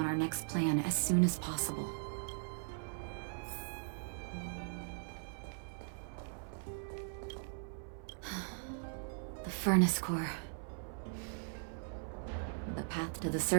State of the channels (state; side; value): silent; left; 51 dB below the other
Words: our next plan as soon as possible. The furnace core. The path to the